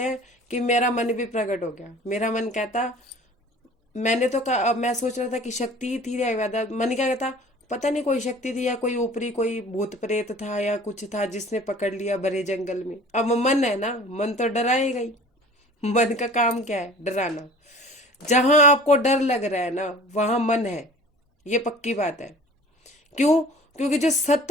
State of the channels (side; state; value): both; normal; correlation 0.45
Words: हैं कि मेरा मन भी प्रकट हो गया। मेरा मन कहता, मैंने तो कहा, मैं सोच रहा था कि शक्ति थी या व्याधा। मन क्या कहता, पता नहीं कोई शक्ति थी या कोई ऊपरी कोई भूत प्रेत था या कुछ था जिसने पकड़ लिया भरे जंगल में। अब मन है ना, मन तो डराएगा ही। मन का काम क्या है, डराना। जहां आपको डर लग रहा है ना, वहां मन है, ये पक्की बात है। क्यों? क्योंकि जो